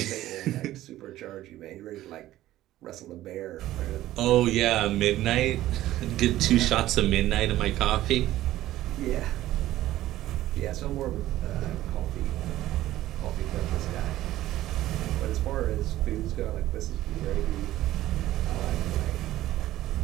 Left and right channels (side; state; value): left; quieter; 14.7 dB